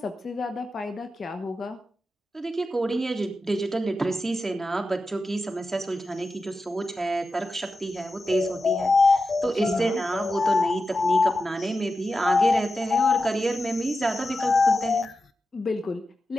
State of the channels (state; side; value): normal; both; correlation 0.91